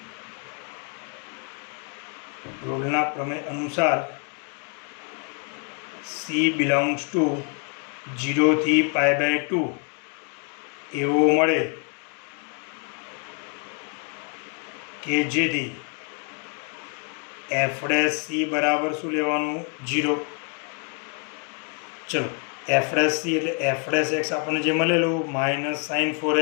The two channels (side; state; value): right; quieter; 37.7 dB